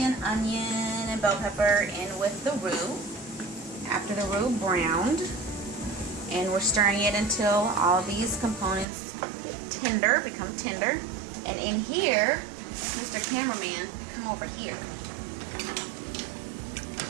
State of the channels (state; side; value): drops out; left; at 8.8 s